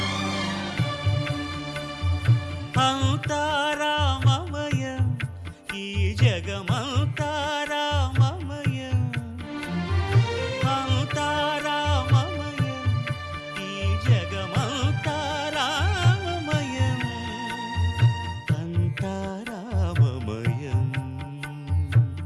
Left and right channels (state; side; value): identical; both; correlation 1.00